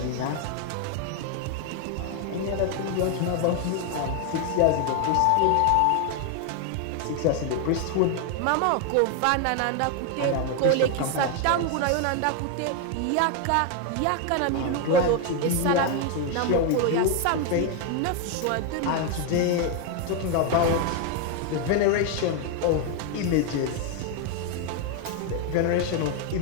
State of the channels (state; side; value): different; both; correlation 0.01